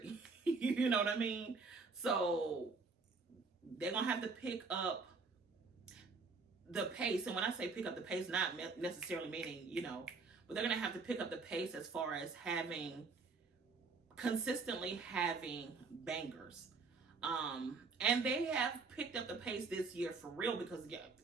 You know what I mean? So they're gonna have to pick up the pace. And when I say pick up the pace, not necessarily meaning, but they're gonna have to pick up the pace as far as consistently having bangers. And they have picked up the pace this year for real, because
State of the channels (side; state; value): left; quieter; 4.4 dB